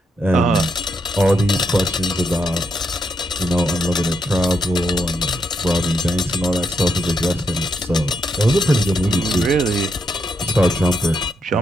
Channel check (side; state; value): both; normal; correlation 0.81